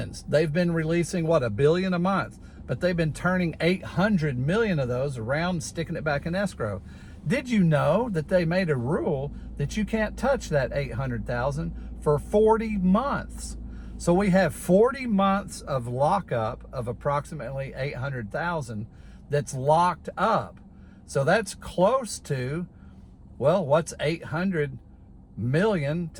they've been releasing, $1 billion a month, but they've been turning 800 million of those around, sticking it back in escrow. Did you know that they made a rule that you can't touch that 800,000 for 40 months? So we have 40 months of lockup of approximately 800,000 that's locked up. So that's close to, well, what's 800 million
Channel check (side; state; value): both; identical; correlation 1.00